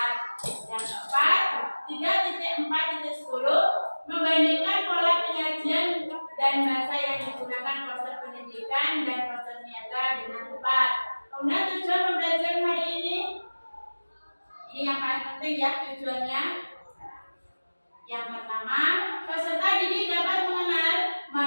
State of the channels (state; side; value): inverted; both; correlation -1.00